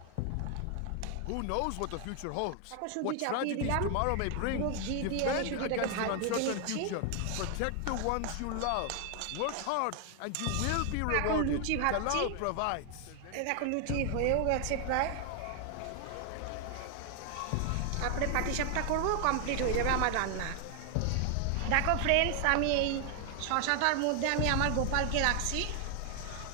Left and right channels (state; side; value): different; both; correlation 0.00